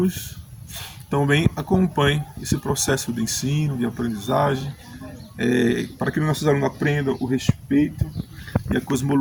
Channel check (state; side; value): identical; both; correlation 1.00